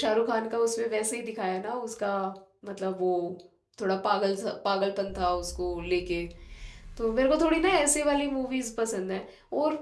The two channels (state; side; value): identical; both; correlation 1.00